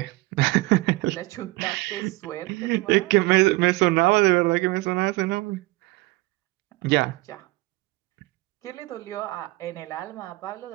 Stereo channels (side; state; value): left; quieter; 21.6 dB